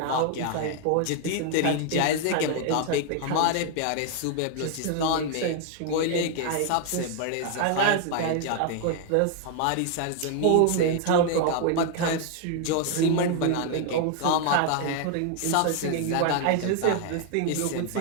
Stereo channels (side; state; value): both; different; correlation 0.00